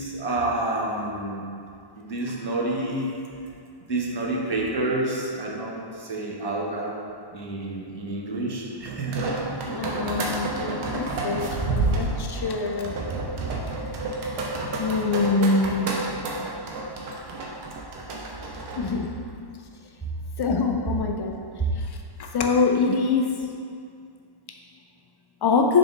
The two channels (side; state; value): right; late; 1.1 ms